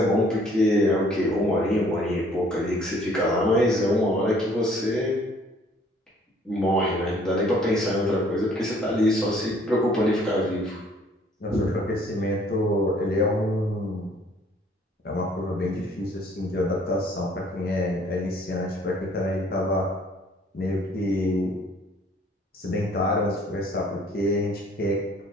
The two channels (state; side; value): normal; both; correlation 0.58